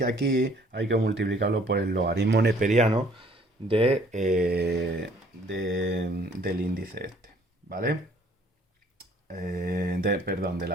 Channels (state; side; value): normal; both; correlation 0.59